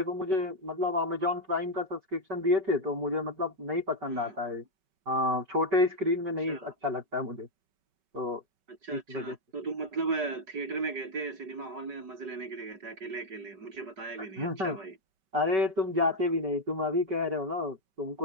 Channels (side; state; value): left; late; 5.3 ms